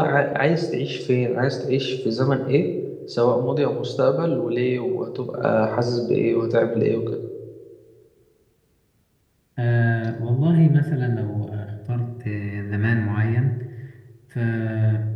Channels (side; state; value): both; identical; correlation 1.00